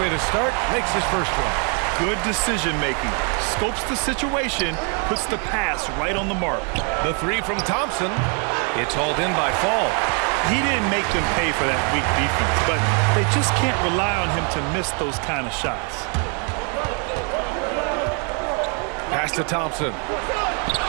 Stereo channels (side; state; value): left; quieter; 37.9 dB